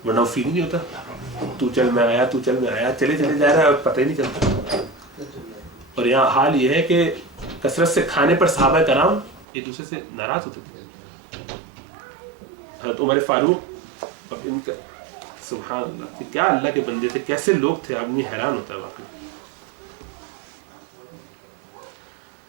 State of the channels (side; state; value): left; drops out; at 9.5 s